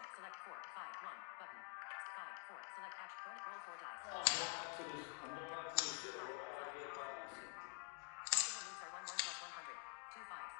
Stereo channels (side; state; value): right; quieter; 39.1 dB